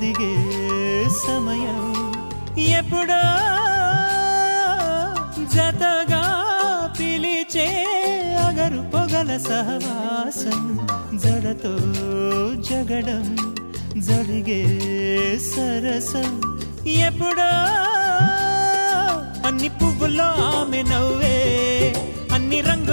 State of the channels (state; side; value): inverted; both; correlation -1.00